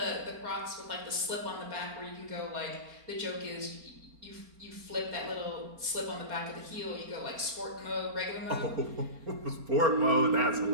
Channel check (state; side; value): late; left; 4.3 ms